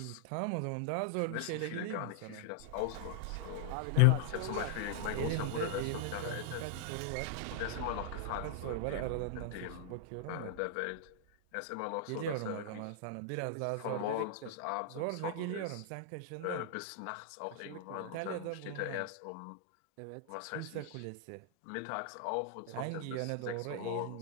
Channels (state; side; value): different; both; correlation 0.00